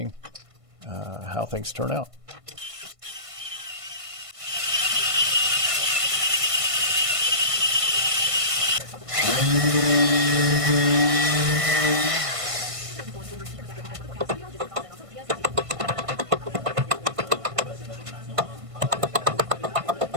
how things turn out.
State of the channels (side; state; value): left; late; 1.5 ms